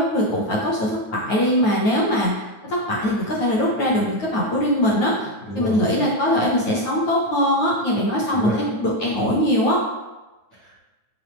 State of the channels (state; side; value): late; right; 9.4 ms